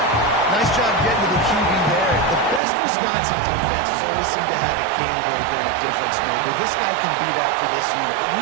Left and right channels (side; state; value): left; drops out; at 2.6 s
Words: Nice job getting to the QB there. The best Wisconsin defense has always seemed to have a game breaker and a difference maker. This guy can be that for this unit. But